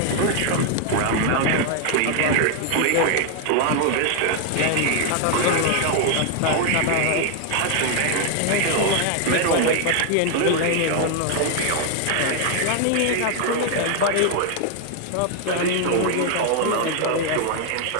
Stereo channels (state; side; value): different; both; correlation 0.00